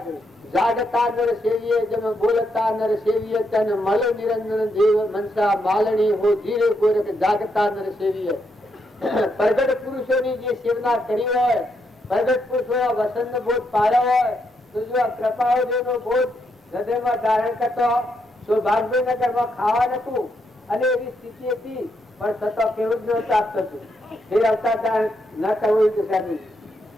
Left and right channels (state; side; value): normal; both; correlation 0.79